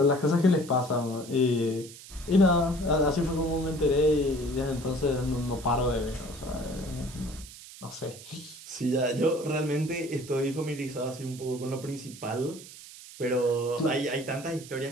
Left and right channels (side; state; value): right; noise; hiss, 17 dB below the sound